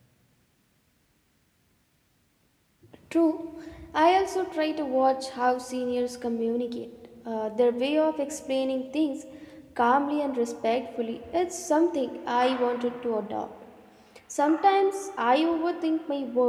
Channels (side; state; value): both; identical; correlation 1.00